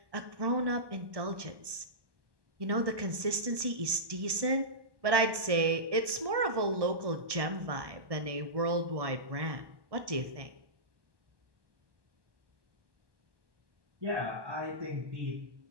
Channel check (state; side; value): late; left; 1.2 ms